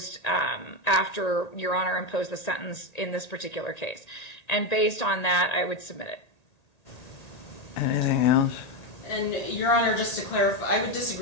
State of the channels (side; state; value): right; late; 1.8 ms